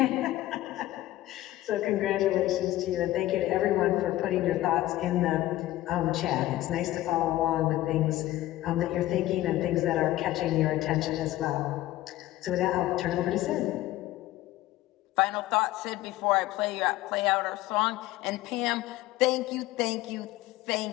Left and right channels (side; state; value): right; quieter; 15.6 dB